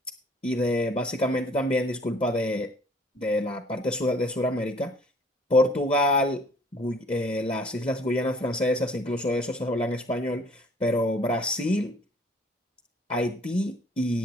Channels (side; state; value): both; normal; correlation 0.56